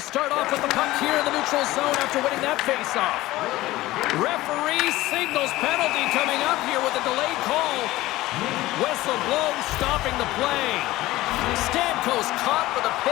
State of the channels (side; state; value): right; quieter; 17.4 dB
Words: start off with the puck here in the neutral zone after winning that faceoff. Referee signals penalty coming up here with a delayed call. Whistle blows, stopping the play. Stamkos caught with a